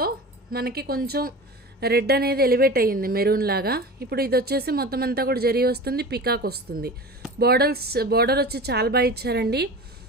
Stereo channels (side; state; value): both; normal; correlation 0.33